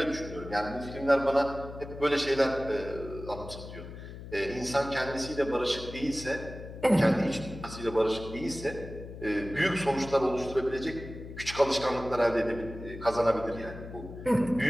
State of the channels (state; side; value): noise; left; hum, 12 dB below the sound